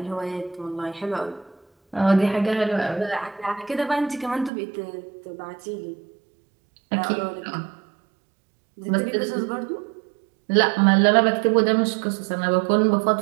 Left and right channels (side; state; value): left; drops out; at 4.5 s